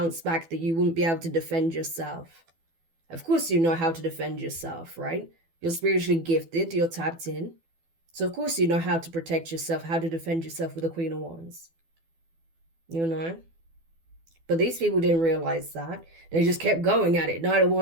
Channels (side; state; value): left; late; 12 ms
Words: back, that you wouldn't be able to defend yourself. Of course you know how to defend yourself, right? You're spiritually gifted, you're tapped in. So of course you know how to protect yourself, how to defend yourself with the Queen of Wands. You know? But these people didn't realize that. They just kept going at it. Knight of